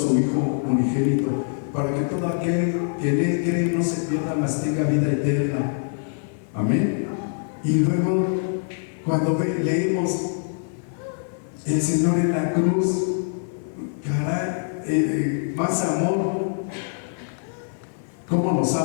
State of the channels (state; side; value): silent; right; 63 dB below the other